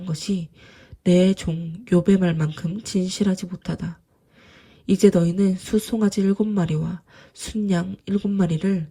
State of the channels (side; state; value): both; identical; correlation 1.00